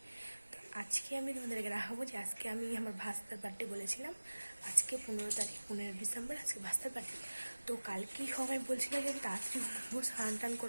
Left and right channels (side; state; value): both; inverted; correlation -1.00